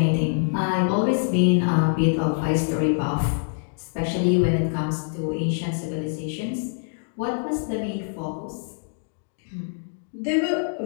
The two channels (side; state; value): right; silent; digital silence